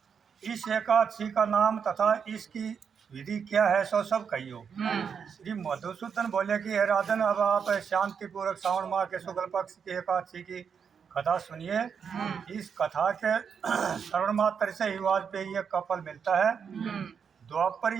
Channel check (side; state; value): left; quieter; 6.8 dB